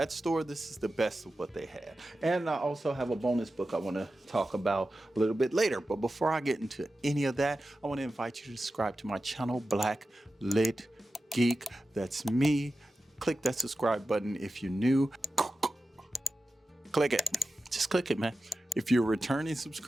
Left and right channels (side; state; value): both; normal; correlation 0.93